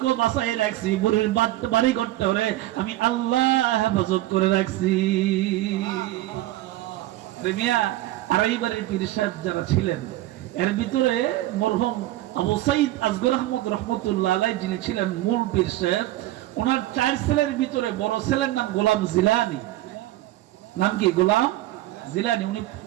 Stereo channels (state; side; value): quieter; left; 16.0 dB